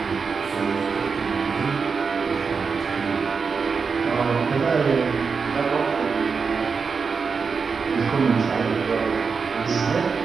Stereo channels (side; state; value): left; quieter; 5.3 dB